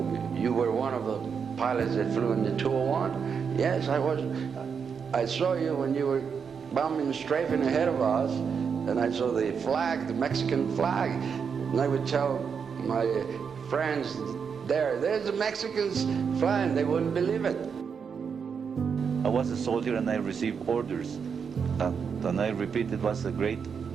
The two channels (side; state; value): left; quieter; 6.4 dB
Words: "You were one of the pilots that flew in the 201?" "Yes, I was. I saw you when you were bombing strafing ahead of us, and I saw the flag, the Mexican flag, and I would tell my friends there's the Mexicans flying. They wouldn't believe it." I was a soldier and I received orders. And I repeat, it was a great